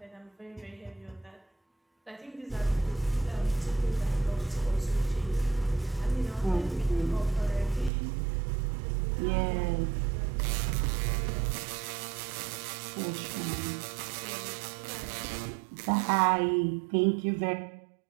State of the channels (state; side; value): drops out; left; at 7.9 s